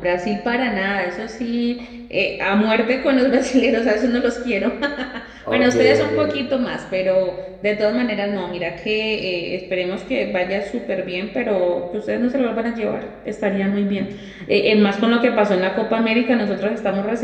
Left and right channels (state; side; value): identical; both; correlation 1.00